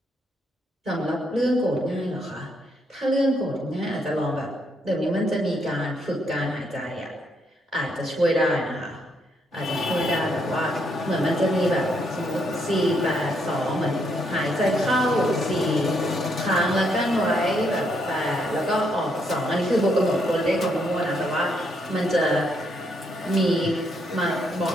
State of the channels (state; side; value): normal; both; correlation 0.75